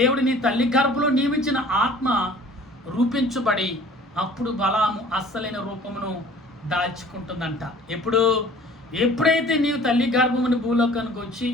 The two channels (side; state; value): both; normal; correlation 0.50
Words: నీ తల్లి గర్భంలో నియమించిన ఆత్మ రూపించబడి అప్పుడు బలాము అస్సలైన రూపమును దాల్చుకుంటుందంట. ఎప్పుడైతే నీవు తల్లి గర్భముని భూలోకానికి వచ్చి